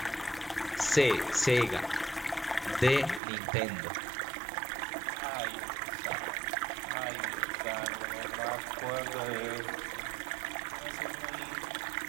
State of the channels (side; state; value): left; drops out; at 3.2 s